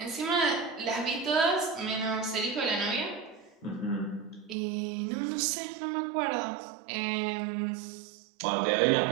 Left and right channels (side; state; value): left; drops out; at 4.5 s